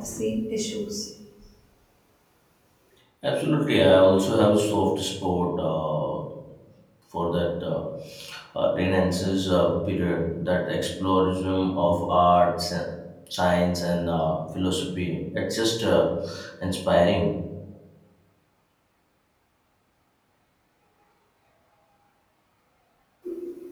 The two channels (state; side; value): identical; both; correlation 1.00